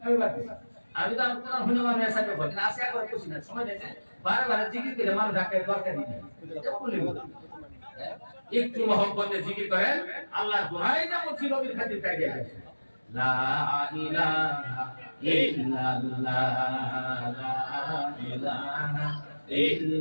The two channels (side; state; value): both; inverted; correlation -1.00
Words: না আমি তো আপনারা হইনো আমি আশা করব না আশা করে খুশি না সময় দিতে বারবার জিকির করে মানুষ ডাকে দরকার নেই একটু মহব্বতে জিকির করেন আল্লাহর দোহাই যেমন ছিল নবীর খাতির তাই গেছে লা ইলাহা ইল্লাল্লাহ লা ইলাহা